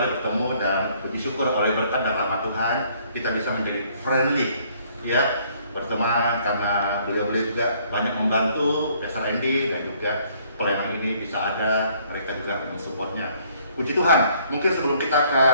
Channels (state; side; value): inverted; both; correlation -0.63